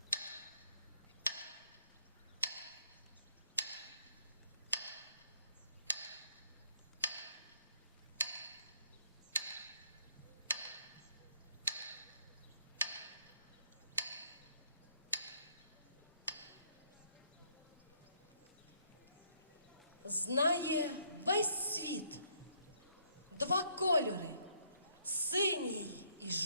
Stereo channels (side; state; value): both; inverted; correlation -0.68